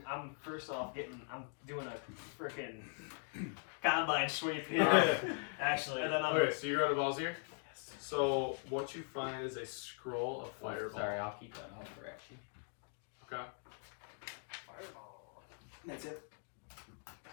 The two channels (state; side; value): silent; right; 51 dB below the other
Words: I'm first off I'm doing a freaking combine sweep here. Actually, and then I'm Okay, so you're going to Balzir? So what you find is a scroll of fireball. Sorry, I'll keep that on for actually. Okay. fireball. That's it.